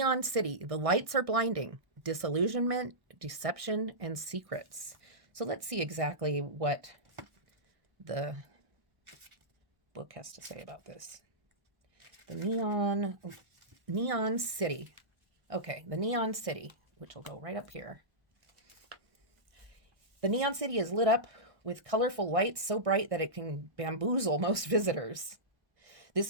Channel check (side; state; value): left; late; 1.1 ms